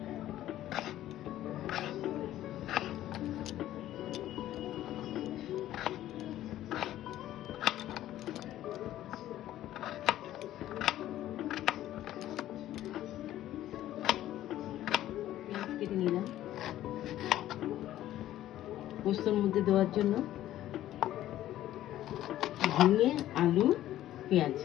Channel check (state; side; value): quieter; right; 13.4 dB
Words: কেটে নিলাম পোস্তর মধ্যে দেওয়ার জন্য। ঝিঙে আলু পেঁয়াজ